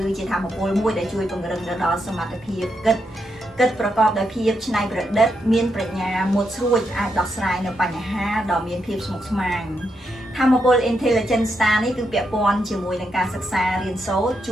ជាធម៌ពលមួយដែលជួយពង្រឹងដល់សមត្ថភាពគិតប្រកបដោយភាពច្នៃប្រឌិតមានប្រាជ្ញាមុតស្រួចអាចដោះស្រាយនៅបញ្ហាដ៏មានភាពស្មុគស្មាញធម៌ពល Intelligent Star នេះគឺពាក់ព័ន្ធជាមួយនឹងការសិក្សារៀនសូត្រជ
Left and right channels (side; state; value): both; normal; correlation 0.82